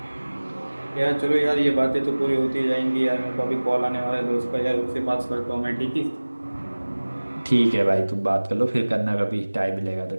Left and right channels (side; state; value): both; inverted; correlation -1.00